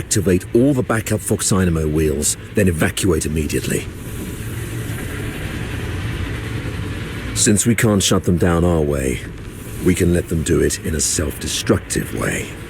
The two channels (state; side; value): identical; both; correlation 1.00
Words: all the backup Foxynamo wheels, then evacuate immediately. Since we can't shut them down our way, we can let them do it in a self-destructive way.